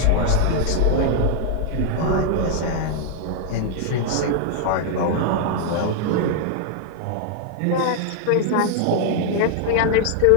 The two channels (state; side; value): different; both; correlation 0.00